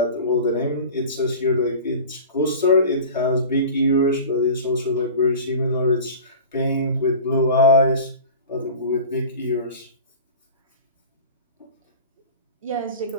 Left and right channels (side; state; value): both; inverted; correlation -0.38